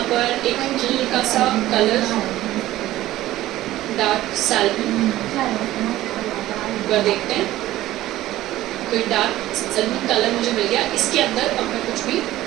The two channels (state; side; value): quieter; left; 15.3 dB